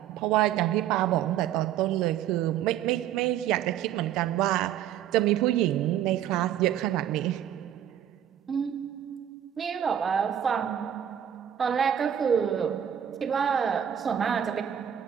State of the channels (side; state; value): left; quieter; 10.1 dB